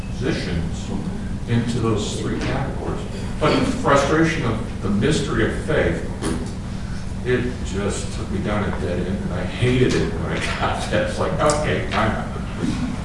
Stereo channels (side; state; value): both; identical; correlation 1.00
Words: into those three categories. But the frustration of the mystery of faith, it just took me down a dead end, and I hated it when I got that. It's like, okay, I'm out.